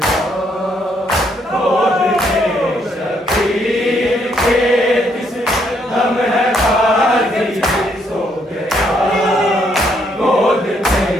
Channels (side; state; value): both; normal; correlation 0.72